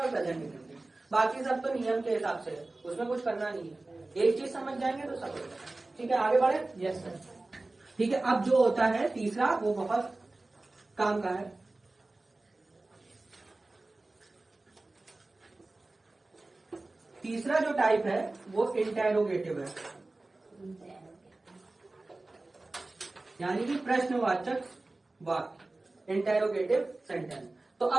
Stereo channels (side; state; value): left; quieter; 3.0 dB